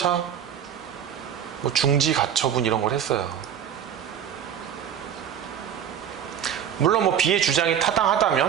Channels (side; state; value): left; quieter; 9.1 dB